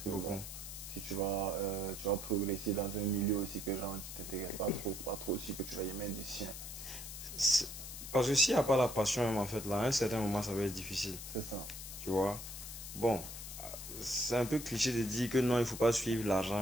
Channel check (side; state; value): left; noise; hiss, 9 dB below the sound